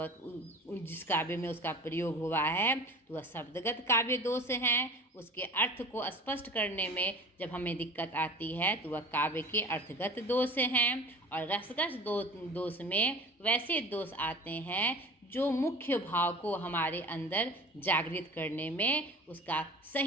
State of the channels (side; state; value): both; normal; correlation 0.39